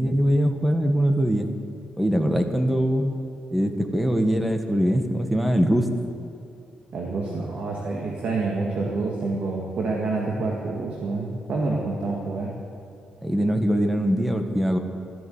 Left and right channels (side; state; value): both; normal; correlation 0.91